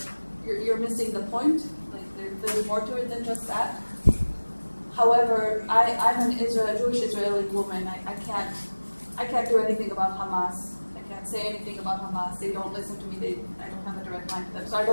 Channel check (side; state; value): both; inverted; correlation -1.00